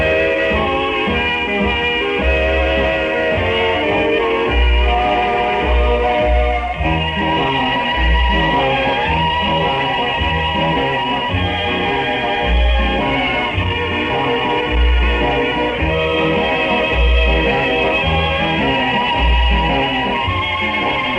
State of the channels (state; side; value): identical; both; correlation 1.00